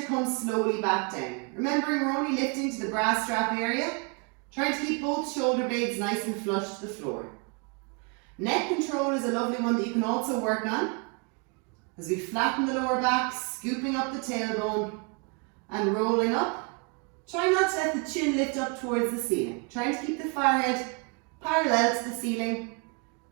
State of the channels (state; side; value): quieter; left; 34.6 dB